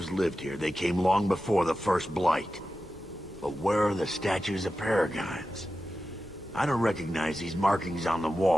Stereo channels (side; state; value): both; normal; correlation 0.92